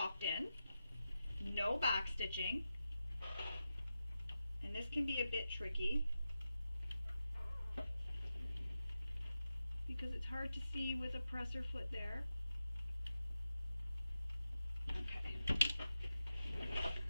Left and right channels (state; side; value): inverted; both; correlation -0.90